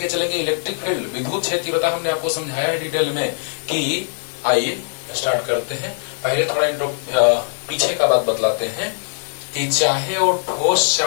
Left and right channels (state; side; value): silent; right; digital silence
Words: चलेंगे इलेक्ट्रिक फील्ड, विद्युत क्षेत्र हमने आपको समझाया है डिटेल में कि आइए स्टार्ट करते हैं। पहले थोड़ा पीछे का बात बतलाते हैं कि चाहे वो ठोस